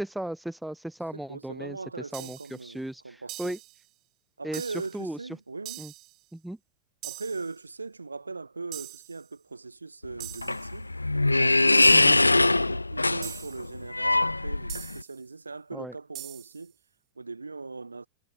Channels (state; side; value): inverted; both; correlation -0.88